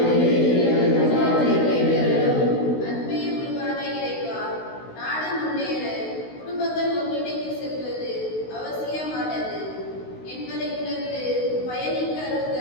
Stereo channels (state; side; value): late; right; 16 ms